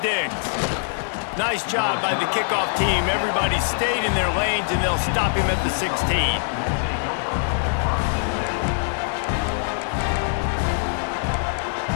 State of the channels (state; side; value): silent; right; 63 dB below the other